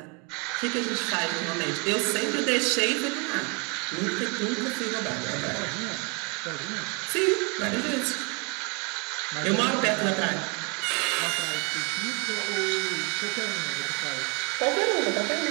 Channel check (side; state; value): left; quieter; 32.7 dB